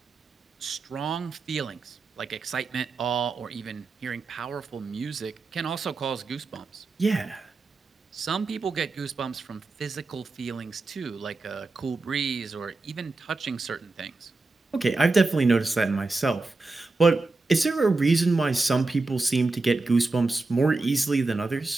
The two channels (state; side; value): quieter; left; 3.5 dB